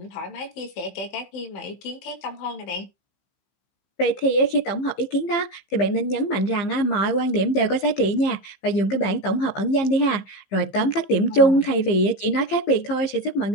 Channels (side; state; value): right; late; 15 ms